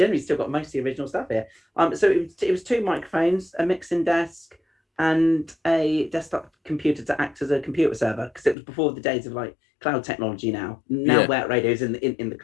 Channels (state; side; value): drops out; right; at 8.6 s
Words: still got most of the original stuff here. So it was 2 microphones, a mixing desk, and a desktop computer to act as a computer server, because it was before the days of like cloud technology. Now Yeah. Where radio's in the